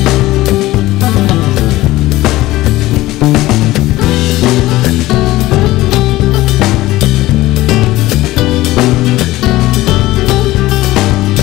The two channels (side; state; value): right; quieter; 17.5 dB